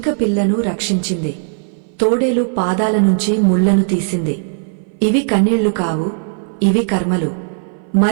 పిల్లను రక్షించింది, తోడేలు పాదాల నుంచి ముళ్లను తీసింది. ఇవి కన్నీళ్లు కావు, ఇవి కర్మలు.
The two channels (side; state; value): left; silent; 61 dB below the other